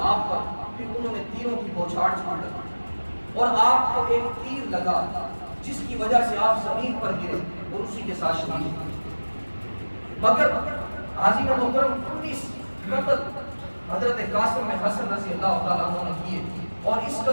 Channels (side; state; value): both; inverted; correlation -1.00